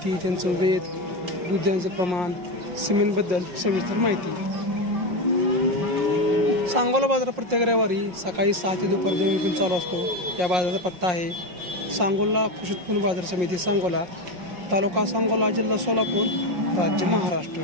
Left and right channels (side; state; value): left; late; 5.6 ms